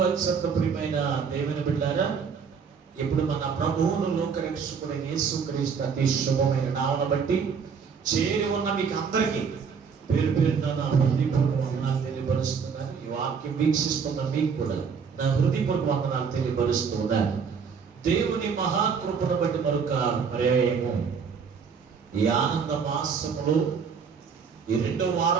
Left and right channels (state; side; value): quieter; left; 6.1 dB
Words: అత్యంత ప్రియమైన దేవుని బిడ్డలారా, ఇప్పుడు మన ప్రభువును లోకరక్షకుడైన యేసుక్రీస్తు అతి శుభమైన నామమును బట్టి చేరి ఉన్న మీకు అందరికీ పేరు పేరున నా హృదయపూర్వక వందనాలు తెలియపరుస్తున్నాను. ఈ వాక్యం వీక్షిస్తున్న మీకు కూడా నా హృదయపూర్వక వందనాలు తెలియపరుస్తున్నాను. దేవుని మహాకృపను బట్టి మరొక పర్యాయము ఈ ఆనంద మాసములో ఈ 2వ